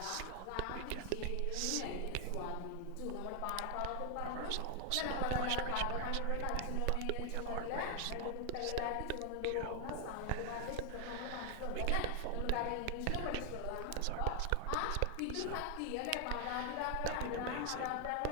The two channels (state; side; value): different; both; correlation 0.00